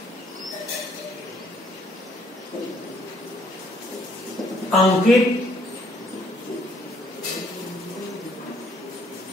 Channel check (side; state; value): both; normal; correlation 0.65